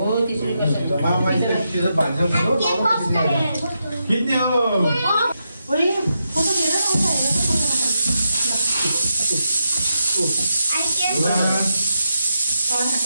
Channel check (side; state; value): both; inverted; correlation -0.85